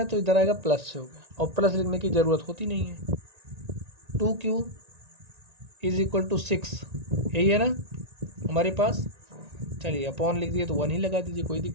तो इधर आएगा प्लस से हो गया, और प्लस लिखने की ज़रूरत होती नहीं है। 2q इज इक्वल टू 6, यही है ना हमारे पास। चलिए अपॉन लिख दिए तो 1 ही लगा दीजिए, कोई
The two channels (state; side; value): late; left; 1.9 ms